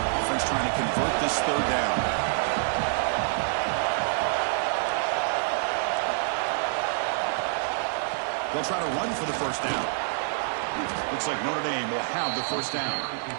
Offense trying to convert this 3rd down. They'll try to run for the first down. Looks like Notre Dame will have the first down.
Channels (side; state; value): left; silent; 60 dB below the other